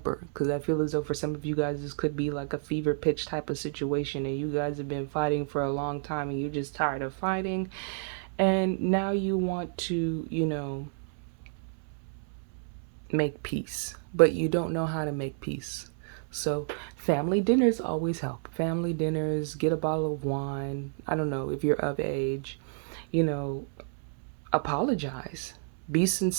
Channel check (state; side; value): silent; left; 58 dB below the other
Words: because I feel as though for some of you guys this could be like a fever pitch type of situation, and you guys have been fighting for a long time and you're just tired of fighting, and now you want to, make peace, but you don't know how to make peace. So family dinners always help. Family dinners, get a bottle of wine. I don't know if you're of age, you know, apologize. Be